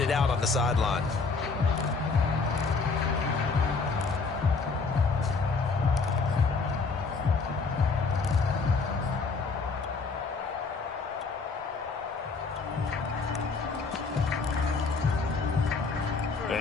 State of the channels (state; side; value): quieter; right; 4.4 dB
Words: it out on the sideline.